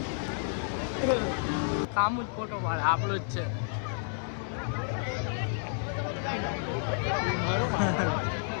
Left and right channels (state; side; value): silent; right; 57 dB below the other